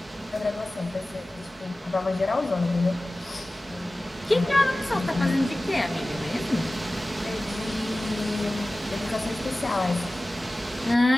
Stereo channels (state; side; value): normal; both; correlation 0.97